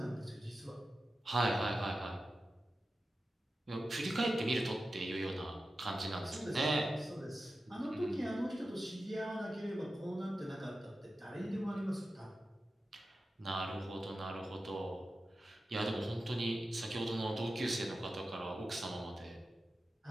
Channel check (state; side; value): normal; both; correlation 0.93